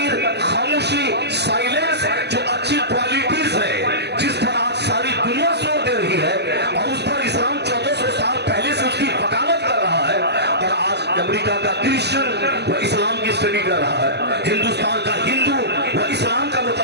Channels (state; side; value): late; left; 0.49 ms